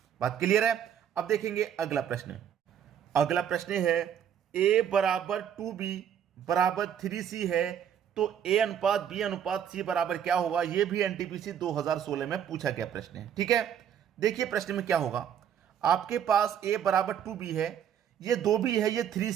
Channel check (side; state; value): left; quieter; 9.0 dB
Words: बात क्लियर है? अब देखेंगे अगला प्रश्न। अगला प्रश्न है, ए बराबर 2b बराबर 3c है, तो ए अनुपात बी अनुपात सी बराबर क्या होगा? यह भी एनटीपीसी 2016 में पूछा गया प्रश्न है। ठीक है, देखिए प्रश्न में क्या होगा। आपके पास ए बराबर 2b है, ये 2b है, ये